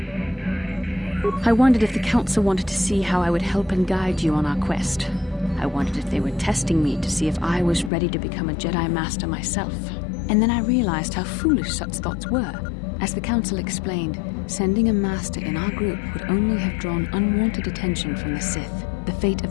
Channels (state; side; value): drops out; right; at 7.9 s